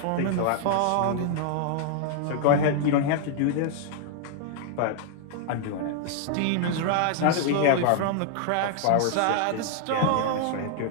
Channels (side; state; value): both; different; correlation -0.01